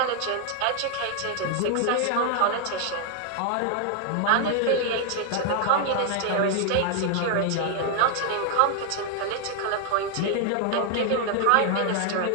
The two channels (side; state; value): both; different; correlation 0.00